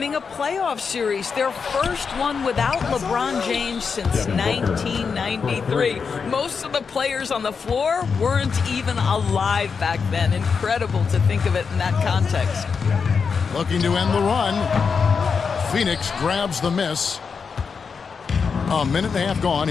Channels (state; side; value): quieter; right; 5.7 dB